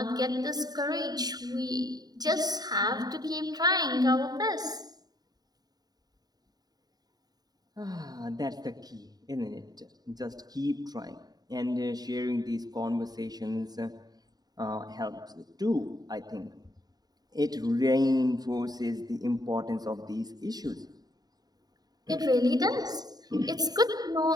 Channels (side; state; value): left; late; 0.19 ms